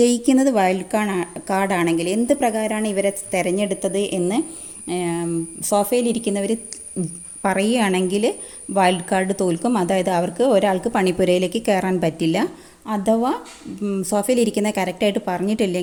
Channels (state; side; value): identical; both; correlation 1.00